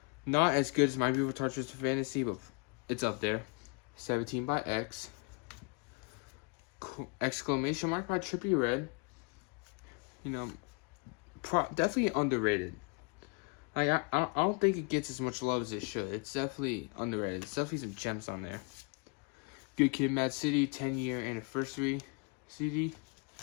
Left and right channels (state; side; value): quieter; right; 32.3 dB